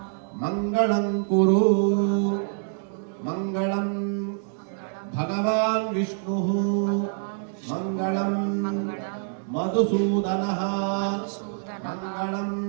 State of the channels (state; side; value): silent; left; digital silence